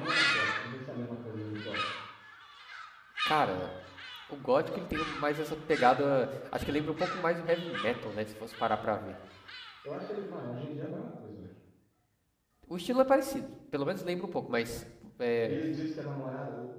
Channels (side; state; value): both; identical; correlation 1.00